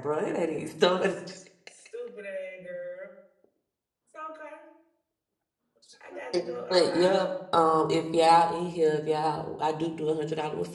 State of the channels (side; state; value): both; identical; correlation 1.00